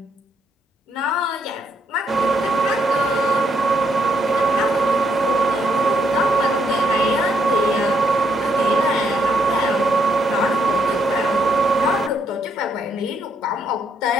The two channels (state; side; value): normal; both; correlation 0.74